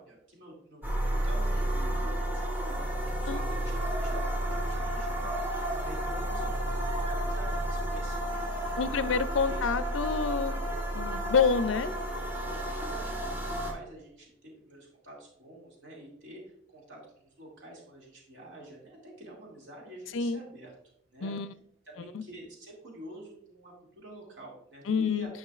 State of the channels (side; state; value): both; normal; correlation 0.35